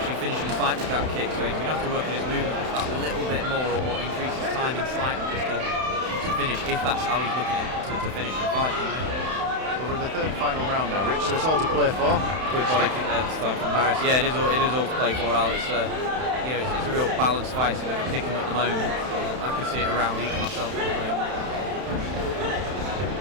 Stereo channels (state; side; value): late; left; 31 ms